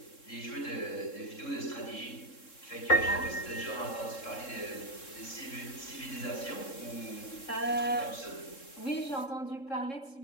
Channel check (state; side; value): late; right; 3.7 ms